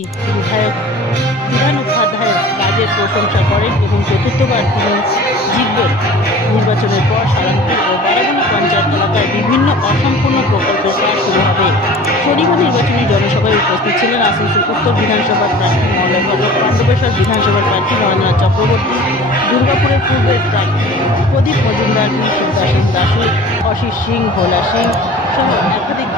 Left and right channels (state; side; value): normal; both; correlation 0.43